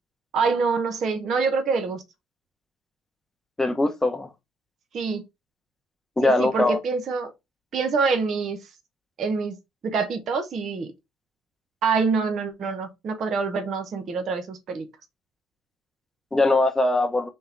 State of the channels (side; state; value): both; normal; correlation 0.72